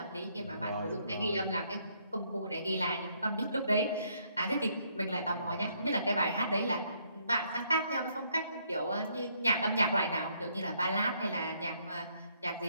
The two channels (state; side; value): inverted; both; correlation -0.70